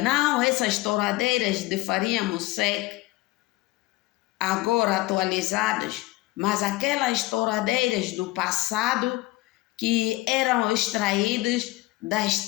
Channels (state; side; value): quieter; right; 19.9 dB